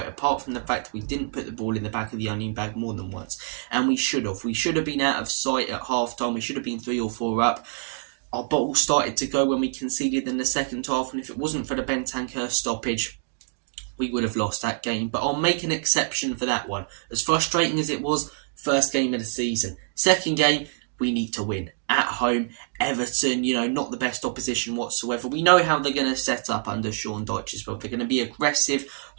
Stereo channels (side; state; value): left; silent; digital silence